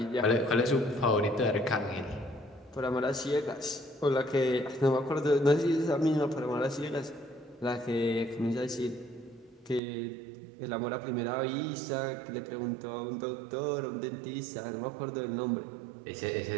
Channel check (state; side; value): drops out; left; at 9.8 s